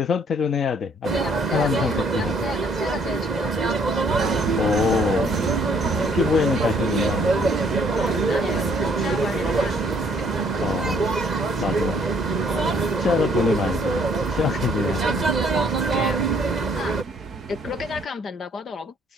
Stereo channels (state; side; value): normal; both; correlation 0.63